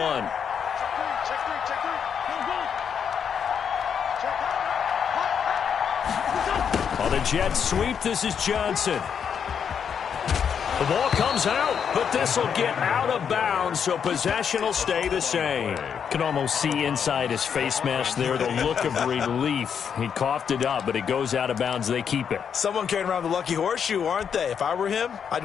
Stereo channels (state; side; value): quieter; right; 7.4 dB